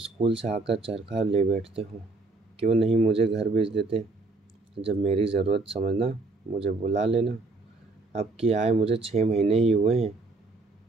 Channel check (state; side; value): quieter; left; 3.4 dB